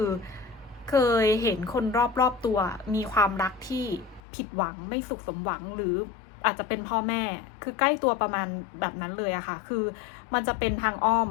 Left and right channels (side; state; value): right; drops out; at 4.2 s